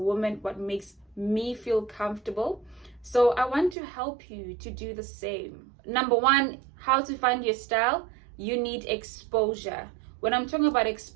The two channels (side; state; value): left; drops out; at 3.8 s